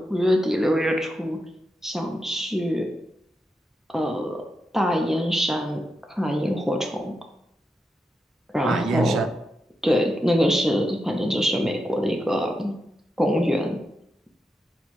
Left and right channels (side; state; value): both; normal; correlation 0.86